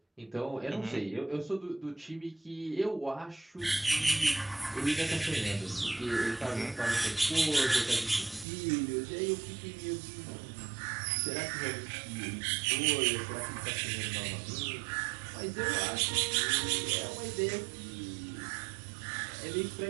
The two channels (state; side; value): drops out; left; at 8.5 s